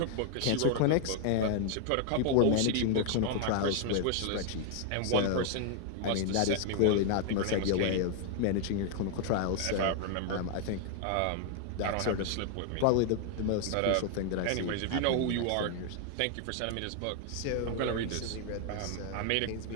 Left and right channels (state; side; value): different; both; correlation 0.00